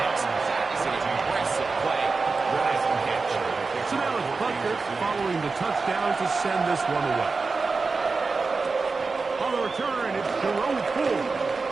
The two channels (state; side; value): quieter; left; 4.2 dB